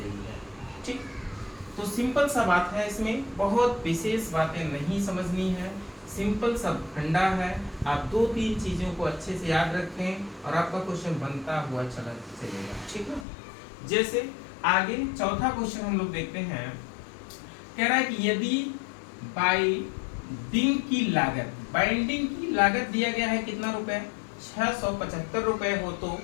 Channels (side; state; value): right; drops out; at 13.2 s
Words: है। ठीक, तो सिंपल सा बात है, इसमें बहुत विशेष बातें नहीं समझनी है, सिंपल सा फंडा है। आप 2-3 चीजों को अच्छे से याद रखें और आपका क्वेश्चन बनता हुआ चला चलेगा, ठीक है। जैसे आगे चौथा क्वेश्चन हम लोग देखते हैं। कह रहा है कि यदि बाइंडिंग की लागत दिया गया है कितना रुपए, 675 रुपए हो तो